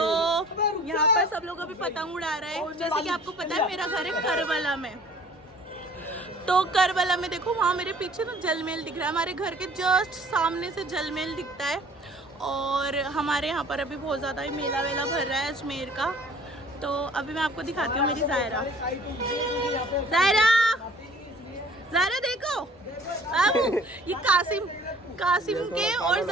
यहाँ पर सब लोग अभी पतंग उड़ा रहे हैं। जैसे कि आपको पता है मेरा घर है करबला में, तो करबला में देखो वहाँ मेरे पीछे ना जलमेल दिख रहा है, हमारे घर के जस्ट सामने से जलमेल दिखता है। और हमारे यहाँ पर अभी बहुत ज़्यादा ही मेला वेला भर रहा है अजमेर का। तो अभी मैं आपको दिखाती हूँ मेरी ज़ायरा। ज़ायरा देखो बाबू, ये कासिम के और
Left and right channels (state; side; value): normal; both; correlation 0.51